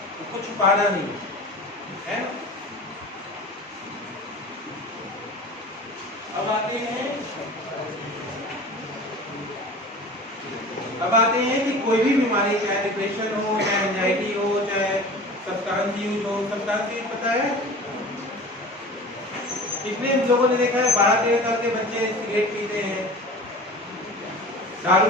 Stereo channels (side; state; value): both; normal; correlation 0.38